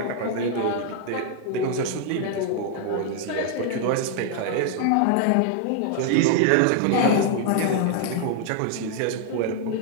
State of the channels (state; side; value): different; both; correlation 0.00